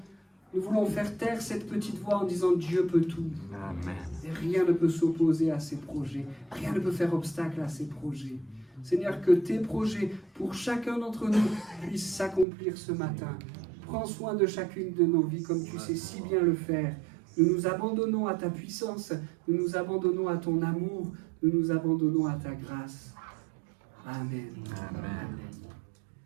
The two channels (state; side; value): drops out; left; at 12.5 s